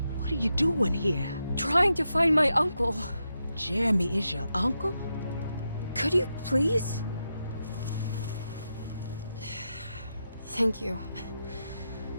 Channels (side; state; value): both; inverted; correlation -0.86